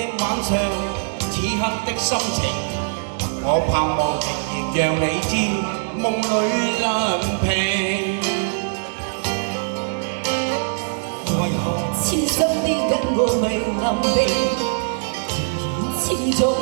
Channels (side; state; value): left; silent; digital silence